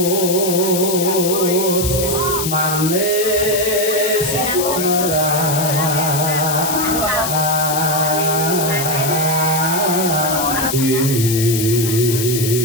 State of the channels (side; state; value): left; noise; hiss, 4 dB below the sound